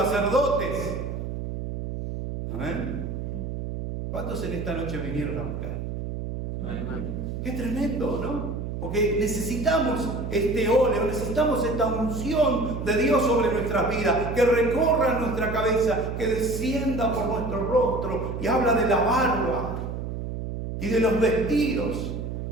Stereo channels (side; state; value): right; noise; hum, 5 dB below the sound